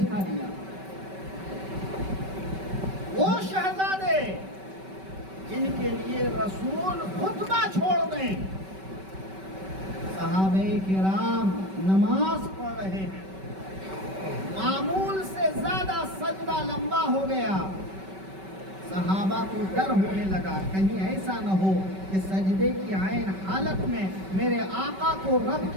دیا۔ وہ شہزادے جن کے لیے رسول خطبہ چھوڑ دیں، صحابہ کرام نماز پڑھ رہے ہیں، صحابہ کو ڈر ہونے لگا کہیں ایسا نہ ہو کہ سجدے کی عین حالت میں میرے آقا کو رب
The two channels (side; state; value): left; late; 5.2 ms